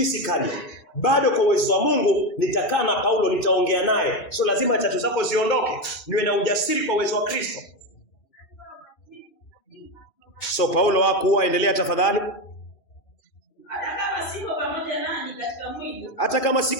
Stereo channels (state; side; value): late; right; 2.6 ms